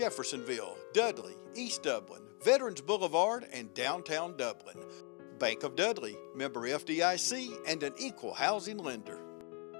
Dudley, East Dublin, Veterans Boulevard, and downtown Dublin. Bank of Dudley, member FDIC, and an equal housing lender.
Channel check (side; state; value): right; quieter; 35.8 dB